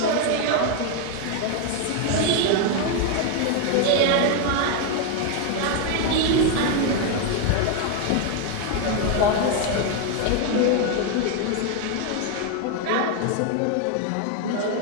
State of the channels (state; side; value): different; both; correlation 0.01